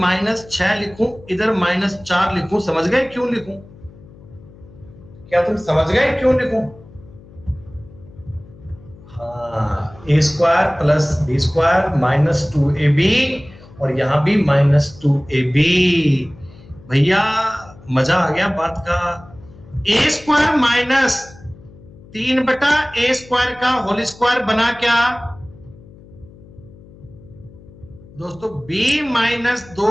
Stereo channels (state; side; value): noise; left; hum, 22 dB below the sound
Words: लिखूं, इधर -4 लिखूं। समझ गए क्यों लिखूं? क्या तुम समझ गए क्यों लिखूं? हाँ, a square plus b square minus 2ab और यहां भी -2ab। भैया मजा आ गया बात का। a स्क्वायर माइनस 3 बटा a स्क्वायर का होल स्क्वायर बना क्या दोस्तों? b माइनस